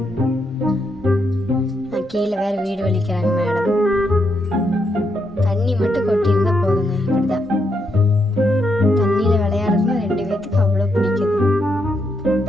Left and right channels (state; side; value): normal; both; correlation 0.80